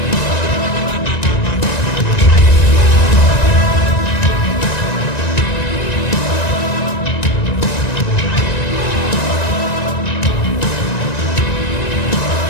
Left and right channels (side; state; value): right; late; 1.9 ms